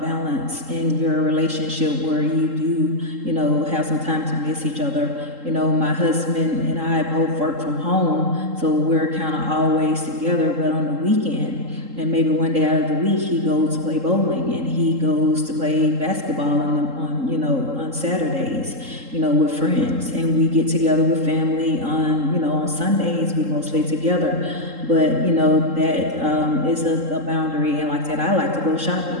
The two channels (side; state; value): left; late; 3.8 ms